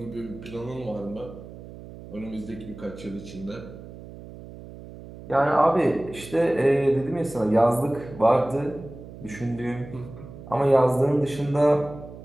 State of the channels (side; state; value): right; noise; hum, 15 dB below the sound